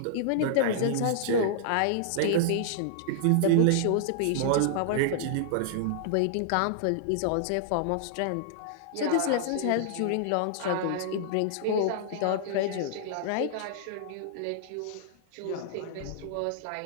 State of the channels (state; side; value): different; both; correlation -0.01